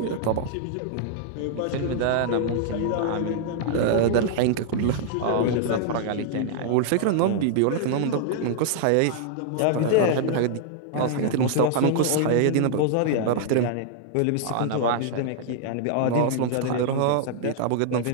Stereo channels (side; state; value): both; different; correlation -0.01